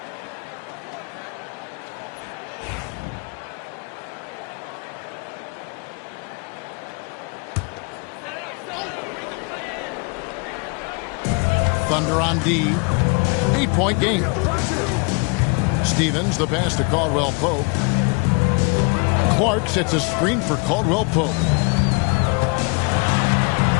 Thunder on D. 8-point game. Stevens, the pass to Caldwell Pope. Clark sets a screen for Caldwell Pope.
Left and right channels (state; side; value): quieter; right; 32.6 dB